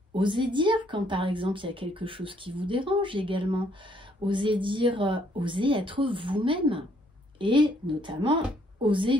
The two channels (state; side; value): normal; both; correlation 0.67